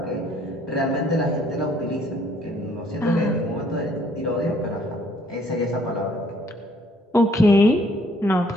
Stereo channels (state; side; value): normal; both; correlation 0.63